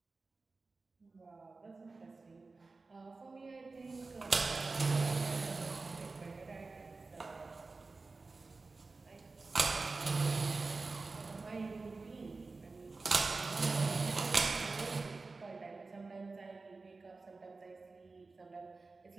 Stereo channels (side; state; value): left; quieter; 3.8 dB